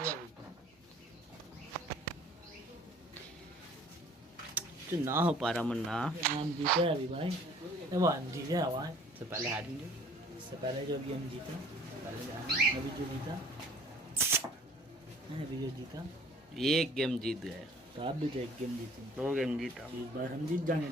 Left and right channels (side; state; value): both; normal; correlation 0.52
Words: तो ना हो पा रहा मन्ना हम जीते अभी भाई वो हम जीते भाई से पहले हारेंगे इससे पहले जो भी हम जीता अभी जो जीता अभी जो जीता एक गेम जीत गए तो आप भी तो एक गेम जीते 2 गेम जीता इस बार हम जीत जाएंगे